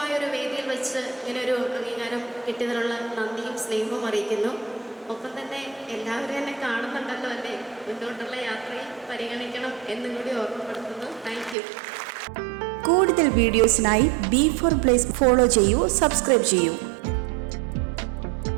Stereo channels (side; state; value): left; drops out; at 11.6 s